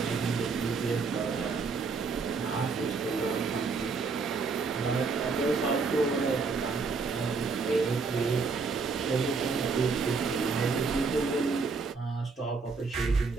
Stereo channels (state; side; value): quieter; left; 4.6 dB